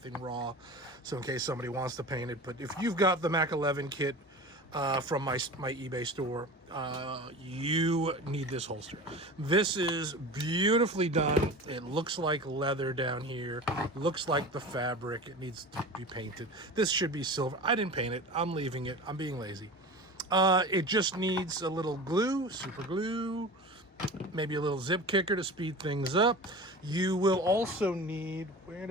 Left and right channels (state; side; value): normal; both; correlation 0.34